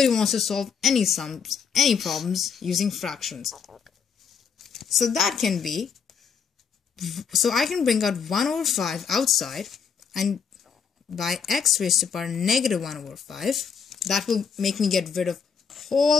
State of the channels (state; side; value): quieter; right; 6.5 dB